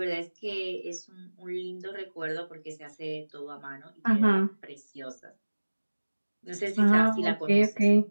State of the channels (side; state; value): both; inverted; correlation -1.00